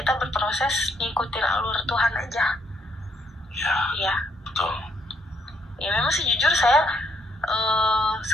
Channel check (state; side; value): normal; both; correlation 0.71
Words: berproses ngikutin alur Tuhan aja. Ya, betul. Ya memang sih jujur saya